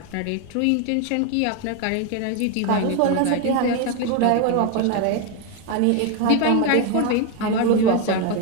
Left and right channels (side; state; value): both; different; correlation 0.01